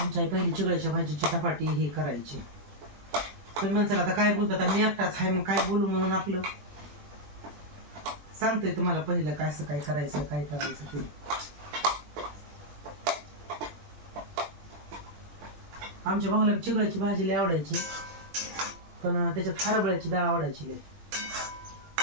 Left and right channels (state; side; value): late; left; 20 ms